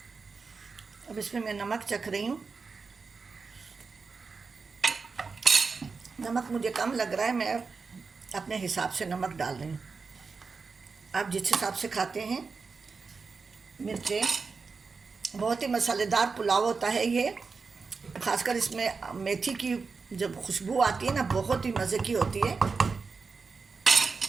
अब इसमें मैं नमक चख रही हूँ। नमक मुझे कम लग रहा है, मैं अपने हिसाब से नमक डाल रही हूँ। आप जिस हिसाब से खाते हैं। मिर्चें, बहुत ही मसालेदार पुलाव होता है ये। ख़ासकर इसमें मेथी की जब खुशबू आती है ना, बहुत ही मज़े की होती है।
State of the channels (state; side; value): quieter; left; 4.7 dB